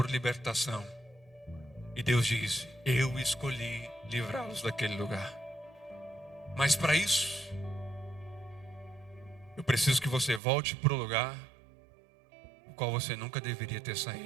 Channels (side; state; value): left; drops out; at 10.4 s